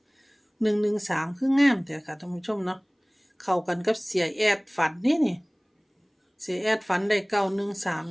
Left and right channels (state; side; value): identical; both; correlation 1.00